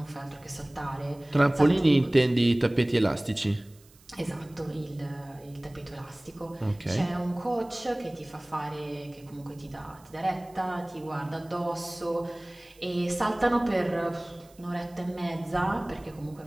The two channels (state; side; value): noise; right; hiss, 28 dB below the sound